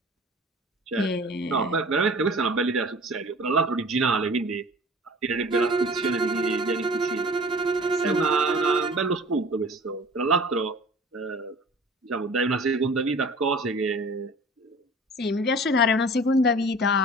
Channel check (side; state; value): both; normal; correlation 0.44